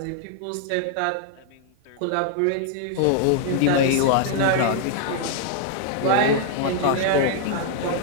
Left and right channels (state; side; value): different; both; correlation 0.00